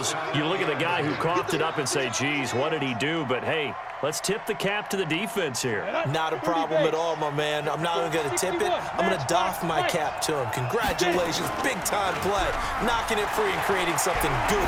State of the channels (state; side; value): identical; both; correlation 1.00